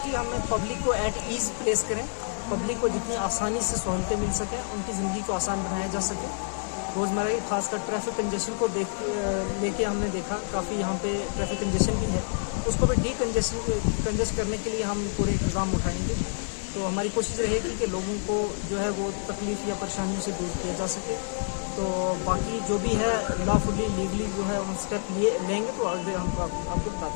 हम पब्लिक को एट ईज़ प्लेस करें, पब्लिक को जितनी आसानी से सहूलतें मिल सकें, उनकी ज़िंदगी को आसान बनाया जा सके। रोज़मर्रा की खासकर ट्रैफिक कंजेशन को लेके हमने देखा काफ़ी यहाँ पे ट्रैफिक कंजेशन भी है, उसको भी कंजेस्ट करने के लिए हम पूरे इंतज़ाम उठाएंगे। तो हमारी कोशिश रहेगी कि लोगों को जो है वो तकलीफ़ या परेशानियों से दूर किया जा सके। तो बाकी जो भी है लॉफुली लीगली जो है हम स्टेप लेंगे तो आगे हम आपको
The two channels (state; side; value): silent; right; digital silence